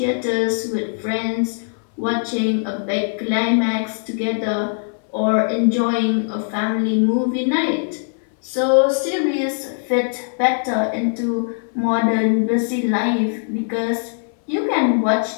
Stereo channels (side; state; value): right; silent; 60 dB below the other